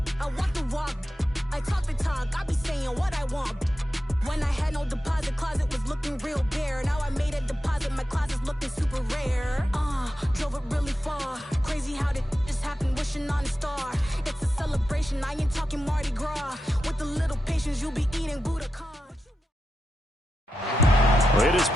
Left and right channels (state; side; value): normal; both; correlation 0.89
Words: I walk the walk, I talk the talk, I be saying what I want. When I had no deposit, closet was looking real bare. Now I made a deposit, my closet's looking super rare. Drove it really far. Crazy how did just happen, wishing on a star. It's a celebration, I ain't talking Mardi Gras. With a little patience, you'll be eating Budokan. It is